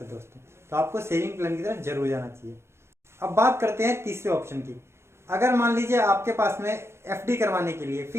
है दोस्तों। तो आपको सेविंग प्लान की तरफ जरूर जाना चाहिए। अब बात करते हैं तीसरे ऑप्शन की। अगर मान लीजिए आपके पास में एफडी करवाने के लिए,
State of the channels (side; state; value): left; late; 0.13 ms